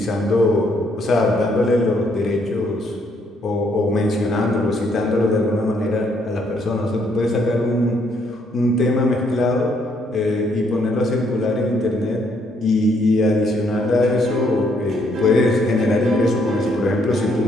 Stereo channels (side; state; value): both; normal; correlation 0.70